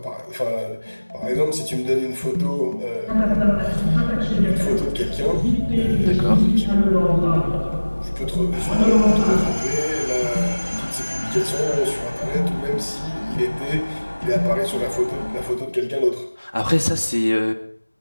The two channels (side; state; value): both; inverted; correlation -1.00